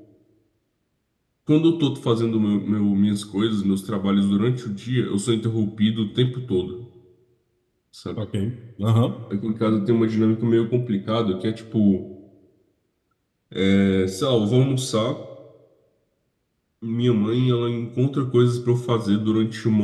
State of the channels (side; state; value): both; identical; correlation 1.00